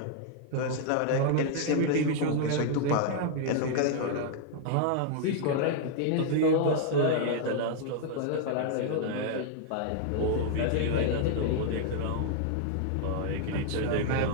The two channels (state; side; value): different; both; correlation 0.00